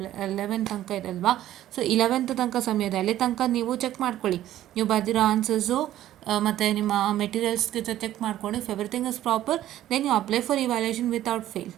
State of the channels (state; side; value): quieter; left; 13.1 dB